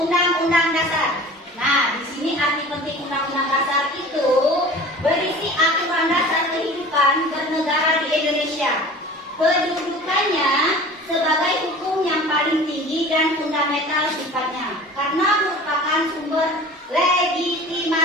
Dasar. Nah, di sini arti penting Undang-Undang Dasar itu berisi aturan dasar kehidupan bernegara di Indonesia. Kedudukannya sebagai hukum yang paling tinggi dan fundamental sifatnya, karena merupakan sumber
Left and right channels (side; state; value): both; normal; correlation 0.41